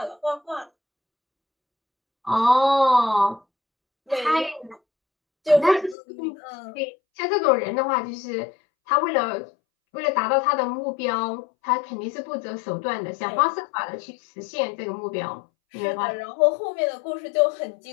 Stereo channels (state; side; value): drops out; right; at 6.0 s